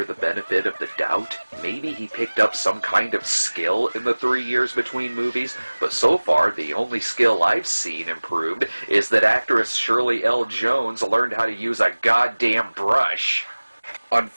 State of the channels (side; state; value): both; inverted; correlation -1.00